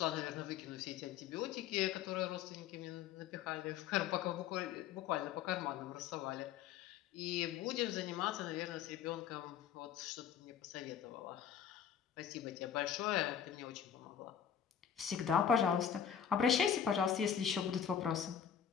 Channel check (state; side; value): quieter; right; 8.4 dB